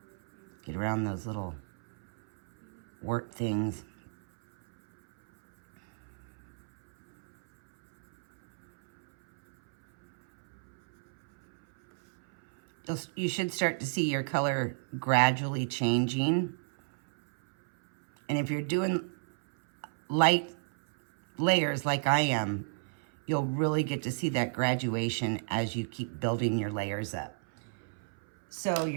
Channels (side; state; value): left; silent; 57 dB below the other